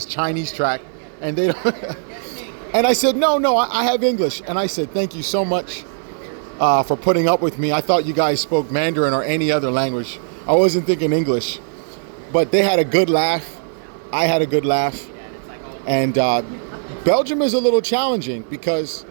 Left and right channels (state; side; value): silent; left; 57 dB below the other